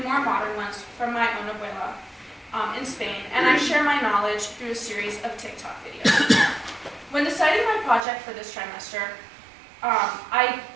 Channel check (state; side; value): drops out; left; at 8.1 s